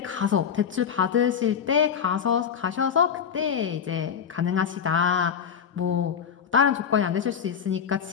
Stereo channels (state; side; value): quieter; right; 7.7 dB